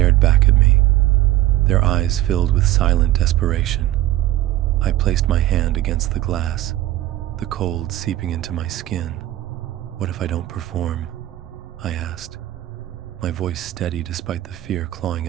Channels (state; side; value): quieter; left; 15.1 dB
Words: back at me, their eyes filled with silent desperation. I placed my hand against the glass, the cold seeping into my skin. "What if I don't perform?" I asked, my voice steady despite the fear clawing